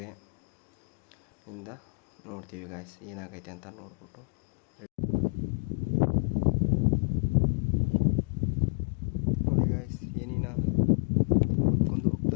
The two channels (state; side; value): quieter; right; 33.7 dB